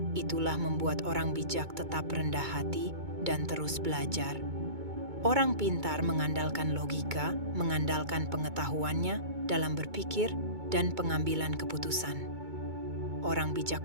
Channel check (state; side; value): late; left; 2.2 ms